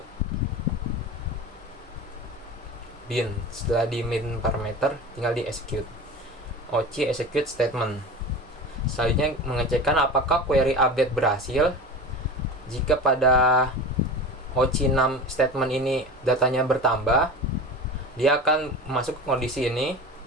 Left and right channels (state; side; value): normal; both; correlation 0.32